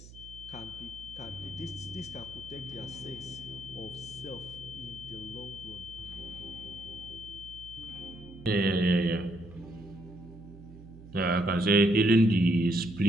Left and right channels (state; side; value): noise; right; hum, 17 dB below the sound